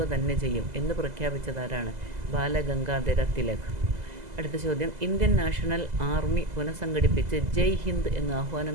തന്നെ ചെയ്യും എന്ന് പ്രഖ്യാപിച്ചതാരാണ്? ബാലഗംഗാധര തിലക്. അടുത്ത ചോദ്യം, ഇന്ത്യൻ നാഷണൽ ആർമി പുനഃസംഘടിപ്പിച്ച് ജയ് ഹിന്ദ് എന്ന്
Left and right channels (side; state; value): left; late; 2.0 ms